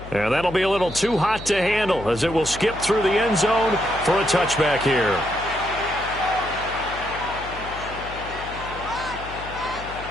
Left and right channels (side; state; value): left; noise; hum, 13 dB below the sound